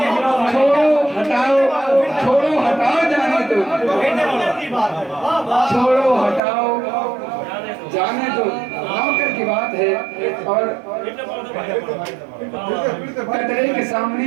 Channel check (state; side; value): drops out; left; at 6.4 s